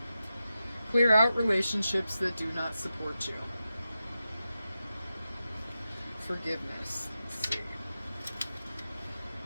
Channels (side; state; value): both; inverted; correlation -0.91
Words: Clear out relationships that do not support you. Forgiveness. Let's see.